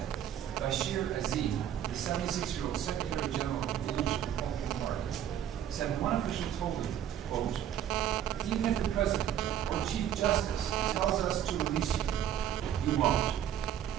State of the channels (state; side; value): quieter; left; 10.3 dB